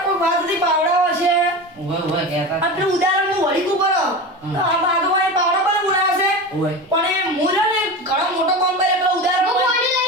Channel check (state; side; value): normal; both; correlation 0.26